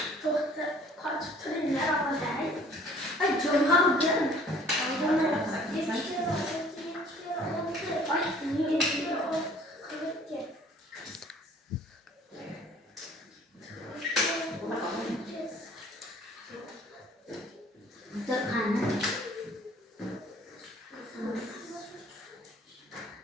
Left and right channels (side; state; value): both; normal; correlation 0.53